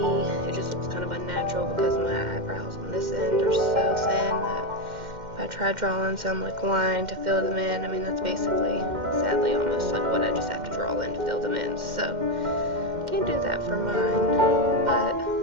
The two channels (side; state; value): left; late; 2.1 ms